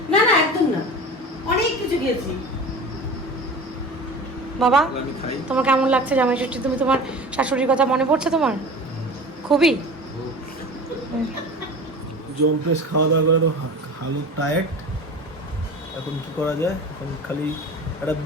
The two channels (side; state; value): both; normal; correlation 0.36